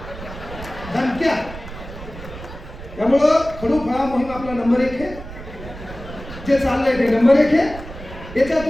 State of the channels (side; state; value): right; noise; rumble, 13 dB below the sound